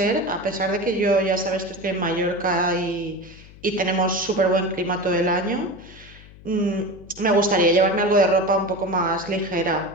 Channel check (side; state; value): left; noise; hum, 21 dB below the sound